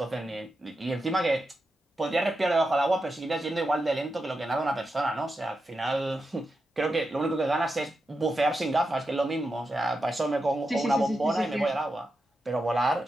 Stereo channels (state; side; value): normal; both; correlation 0.88